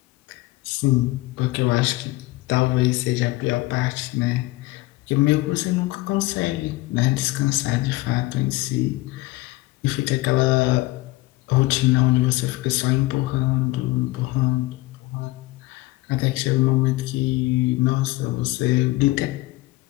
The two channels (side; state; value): right; quieter; 20.0 dB